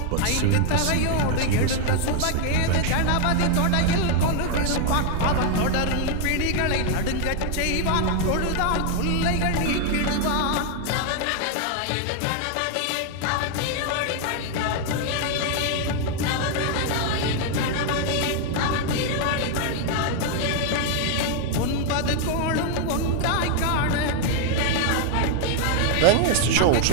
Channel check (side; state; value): both; different; correlation 0.00